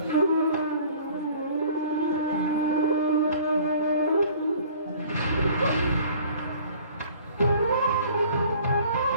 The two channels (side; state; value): both; inverted; correlation -0.50